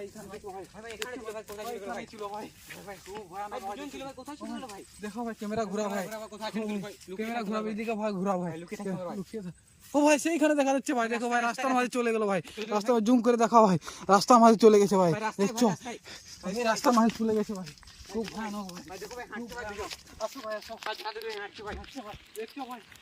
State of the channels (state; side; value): identical; both; correlation 1.00